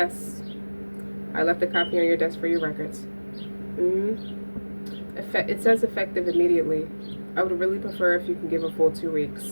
I left a copy on your desk for your records. Mm-hmm. It says effective immediately. I would really prefer if you can give a full 2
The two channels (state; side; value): inverted; both; correlation -1.00